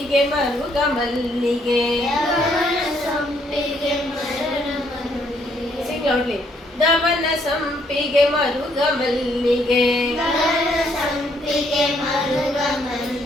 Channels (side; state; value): both; normal; correlation 0.69